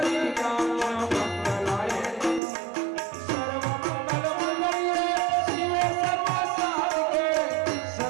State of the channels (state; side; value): drops out; left; at 2.4 s